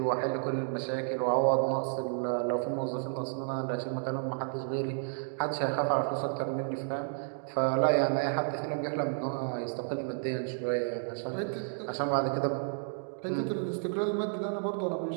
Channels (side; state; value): left; silent; digital silence